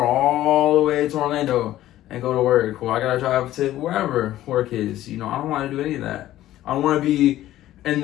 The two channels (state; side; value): quieter; right; 14.1 dB